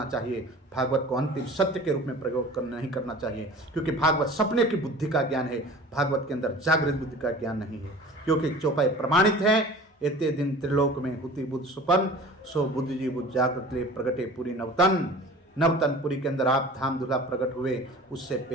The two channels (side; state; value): both; normal; correlation 0.42